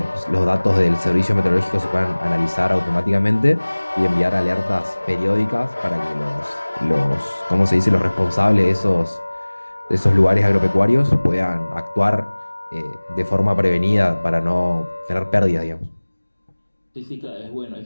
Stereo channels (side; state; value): both; inverted; correlation -1.00